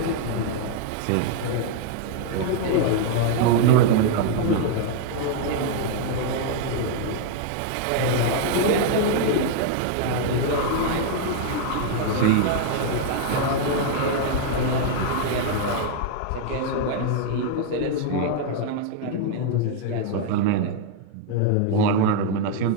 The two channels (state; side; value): different; both; correlation 0.00